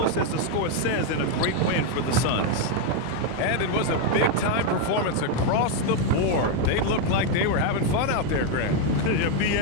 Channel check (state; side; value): different; both; correlation 0.01